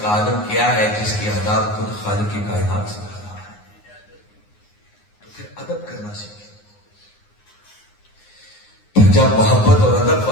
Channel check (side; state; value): right; late; 9.7 ms